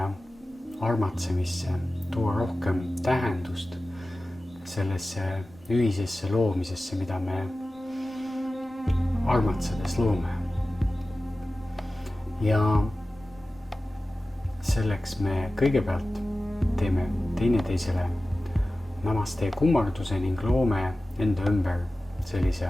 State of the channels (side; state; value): both; normal; correlation 0.95